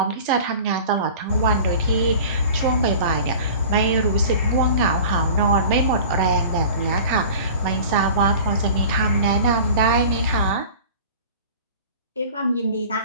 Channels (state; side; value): inverted; both; correlation -0.41